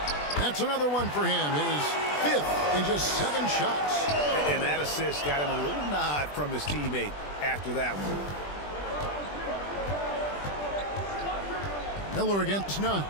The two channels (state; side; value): late; right; 20 ms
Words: That's another one for him. His 5th in just 7 shots. And that assist got him a little nod from his teammate after that one. Miller against Nunn.